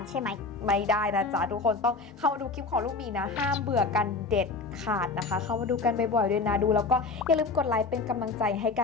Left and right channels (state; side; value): quieter; right; 4.0 dB